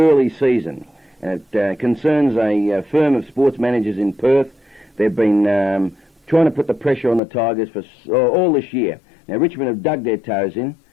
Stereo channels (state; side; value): drops out; right; at 7.2 s